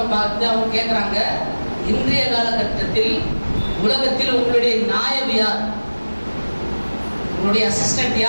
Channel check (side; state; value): both; inverted; correlation -1.00